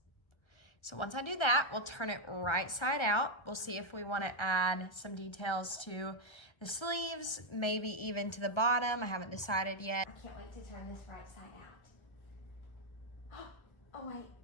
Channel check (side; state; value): right; late; 1.3 ms